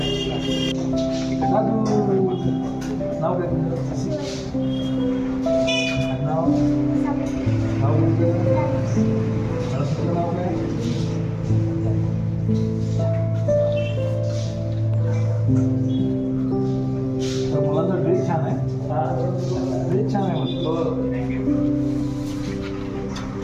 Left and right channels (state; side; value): identical; both; correlation 1.00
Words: मुलांचा ड्रेस छान आहे. ड्रेस छान आहे म्हणतो.